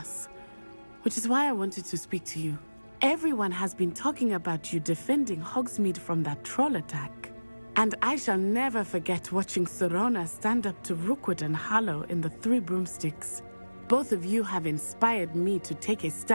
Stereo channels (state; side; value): inverted; both; correlation -1.00